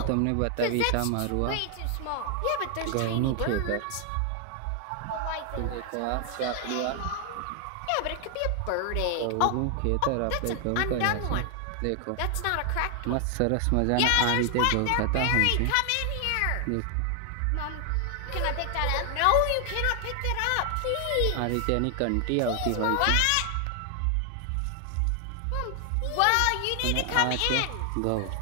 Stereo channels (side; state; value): both; different; correlation 0.00